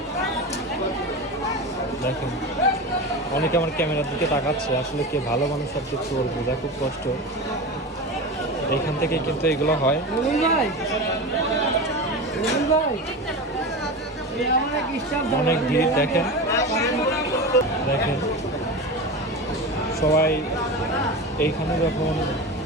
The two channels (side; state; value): both; normal; correlation 0.26